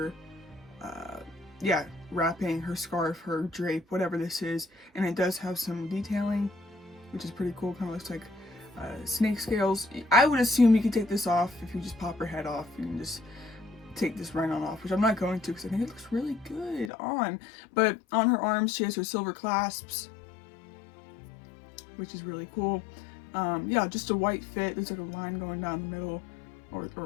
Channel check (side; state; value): right; drops out; at 16.9 s